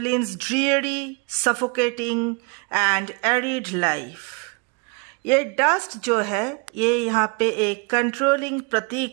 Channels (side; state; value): left; quieter; 32.6 dB